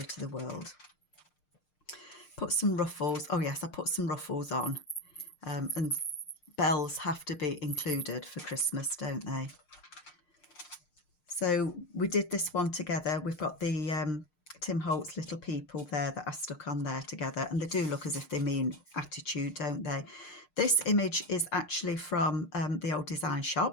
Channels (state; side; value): late; right; 6.6 ms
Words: to the World. Put some ruffles. Oh yes, I put some ruffles on, and bells have to be included for Christmas, don't they? So we did this one together. We've got the Tim Holtz little people there that I stuck on there together, and they do look as if they mean attitude, don't they? This image is actually from the old design